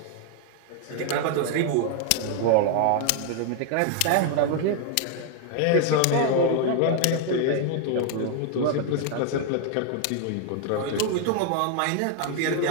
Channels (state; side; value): different; both; correlation 0.00